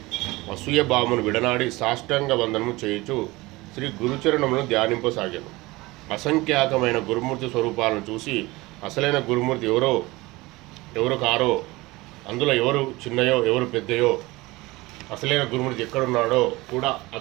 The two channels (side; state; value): left; quieter; 21.4 dB